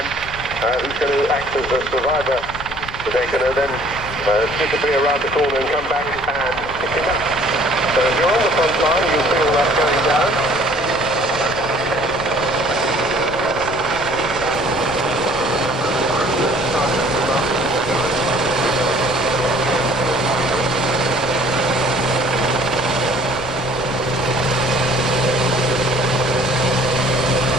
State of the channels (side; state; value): left; noise; rumble, 14 dB below the sound